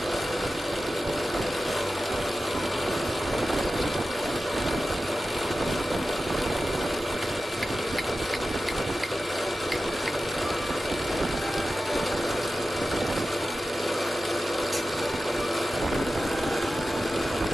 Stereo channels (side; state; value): both; normal; correlation 0.93